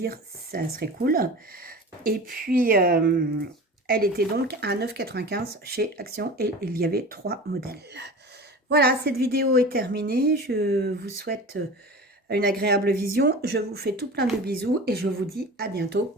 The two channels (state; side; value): normal; both; correlation 0.35